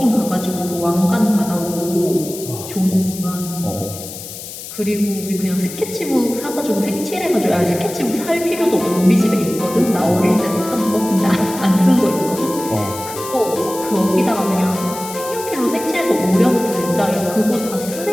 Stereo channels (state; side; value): noise; left; hiss, 11 dB below the sound